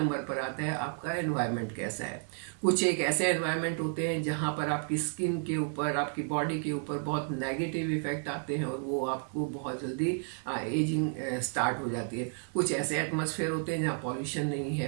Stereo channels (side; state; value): left; silent; 57 dB below the other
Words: पर आता है आपका एनवायरनमेंट कैसा है। कुछ एक ऐसे एनवायरनमेंट होते हैं जहां पर आपकी स्किन के ऊपर, आपकी बॉडी के ऊपर बहुत नेगेटिव इफेक्ट आते हैं और वो आपको बहुत जल्दी एजिंग स्टार्ट हो जाती है। कुछ ऐसे एटमॉस्फेयर होते हैं जहाँ पॉल्यूशन नहीं